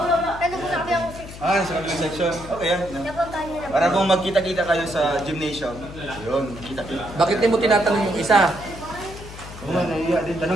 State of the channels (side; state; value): left; noise; hum, 14 dB below the sound